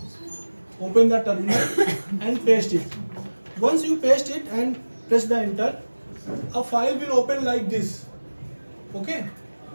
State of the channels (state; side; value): inverted; both; correlation -1.00